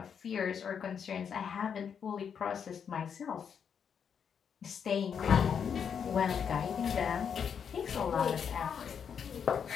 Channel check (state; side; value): quieter; right; 7.3 dB